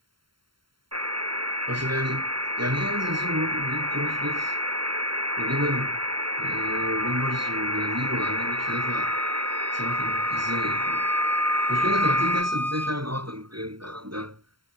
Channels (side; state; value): left; late; 0.73 ms